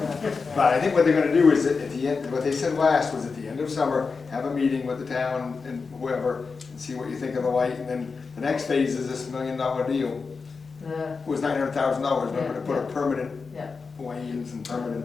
But I think what they're gonna do is that at the end, what they said last was at the end of summer, have a meeting with the town and whoever, and see what you think of the light, and then the next phase is this $1 million deal. It was $900,000, but to put a permanent Yeah. lanes and permanent.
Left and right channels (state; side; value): quieter; right; 4.8 dB